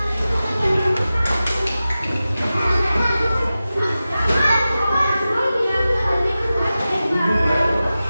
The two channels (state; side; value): inverted; both; correlation -0.95